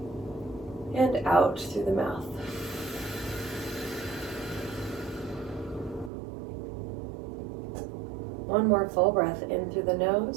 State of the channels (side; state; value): left; drops out; at 6.1 s